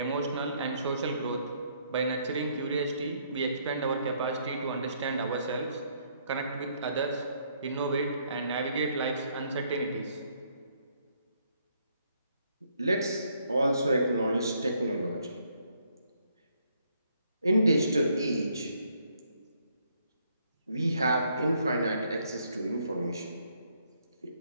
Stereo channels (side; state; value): both; inverted; correlation -0.70